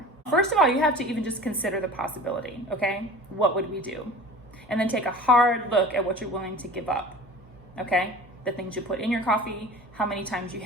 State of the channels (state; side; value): normal; both; correlation 0.39